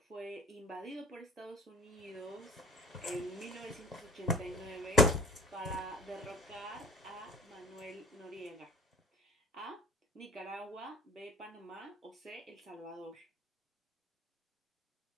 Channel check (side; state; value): both; normal; correlation 0.46